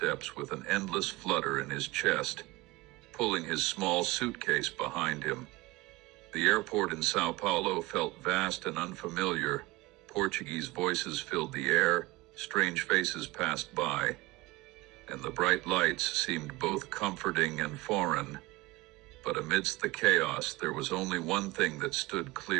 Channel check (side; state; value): left; quieter; 21.1 dB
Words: with an endless flutter in his chest, pulling his small suitcase behind him. The airport in Sao Paulo felt vast and unfamiliar. Portuguese voices filled the air, strange faces passed by, and the bright lights seemed both comforting and foreign. But amidst the chaos, there was only one thing that stood